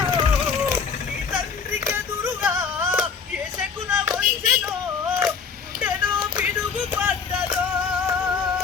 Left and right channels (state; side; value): quieter; right; 5.9 dB